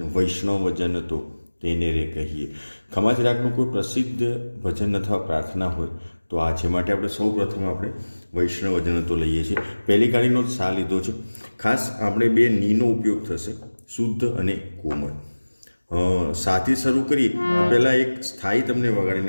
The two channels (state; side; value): inverted; both; correlation -1.00